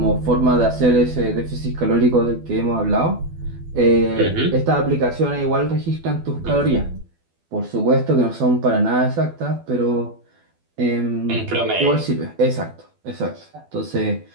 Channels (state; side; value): late; left; 12 ms